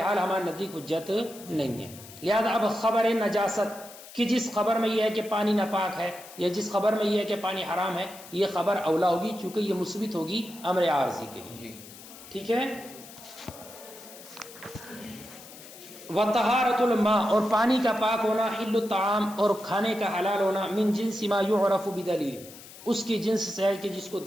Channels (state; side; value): noise; left; hiss, 17 dB below the sound